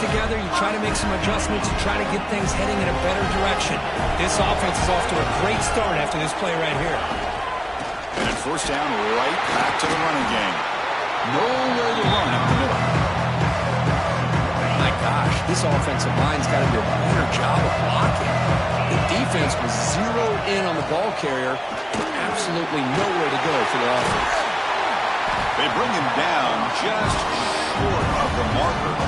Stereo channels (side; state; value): both; identical; correlation 1.00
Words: you try to make some adjustments, you try to get things heading in a better direction. This offense is off to a great start after this play right here. And at first down, right back to the running game. Nowhere to run up the middle. My gosh, this offensive line's got to do a better job of blocking. The defense was zeroed in on the ball carrier and absolutely nowhere to go for the offense. They bring him down just short of the marker,